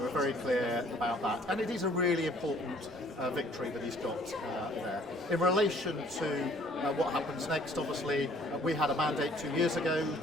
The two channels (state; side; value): normal; both; correlation 0.58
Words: we're very clear about that. And it is a really important victory that he's got there. In relation to what happens next, obviously, we had a mandate 2 years ago